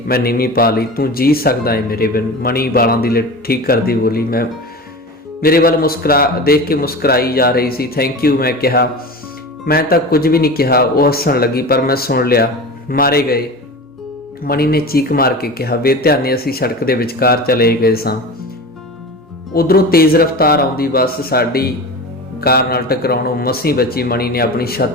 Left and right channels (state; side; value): normal; both; correlation 0.31